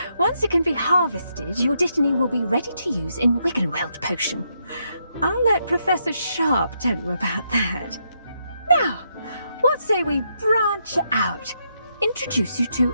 Once it can be harvested, your Dittany will be ready to use in Wiggenweld potion. I'll let Professor Sharp tell you about that. Now, what say we branch out? Introduce you to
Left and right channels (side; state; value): both; inverted; correlation -0.78